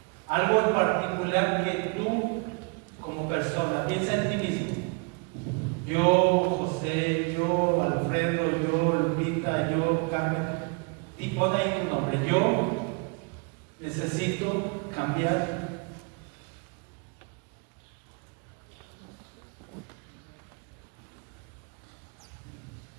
Algo en particular que tú, como persona, piensa en ti mismo. Yo, José, yo, Alfredo, yo, Lupita, yo, Carmen. Y pon ahí tu nombre. Yo necesito cambiar.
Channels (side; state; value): left; quieter; 33.3 dB